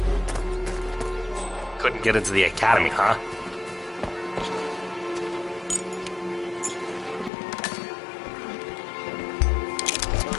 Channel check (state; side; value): drops out; right; at 7.3 s